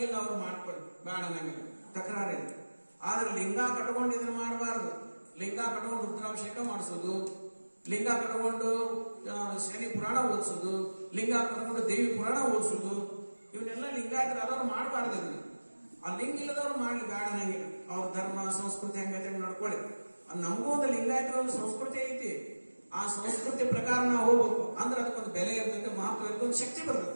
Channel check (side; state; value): both; inverted; correlation -1.00